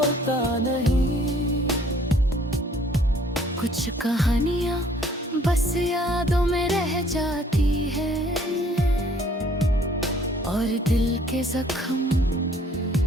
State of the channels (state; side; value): normal; both; correlation 0.59